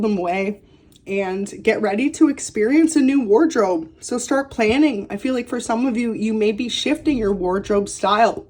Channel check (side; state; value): both; identical; correlation 1.00